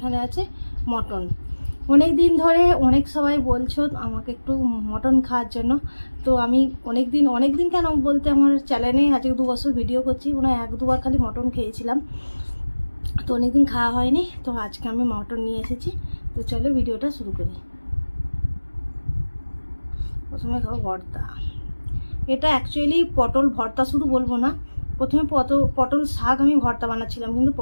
আছে মটন। অনেক দিন ধরে অনেক সবাই বলছো আমাকে একটু মটন খাওয়ার জন্য। তো আমি অনেক দিন কেন বলতে, আমার চ্যানেলে আজকে 2 বছর ভিডিও করছি, মনে হয় 1-2 বার খালি মটন খেয়েছিলাম। তো অনেক দিন খাওয়া হয়নি, তো আজকে আমি মটন নিয়ে এসেছি। তো চলো ভিডিওটা শুরু করি। প্রথমে খাবো ভর্তা। এটা অ্যাকচুয়ালি পটল ভর্তা শুধু বলবো না, প্রথমে পটল শাক আমি ভর্তা বানাচ্ছিলাম, কিন্তু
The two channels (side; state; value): both; inverted; correlation -1.00